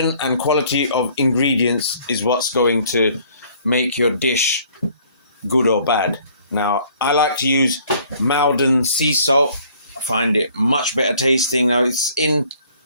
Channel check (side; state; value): both; inverted; correlation -0.59